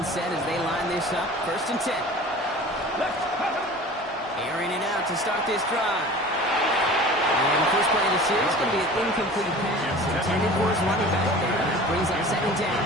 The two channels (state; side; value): normal; both; correlation 0.41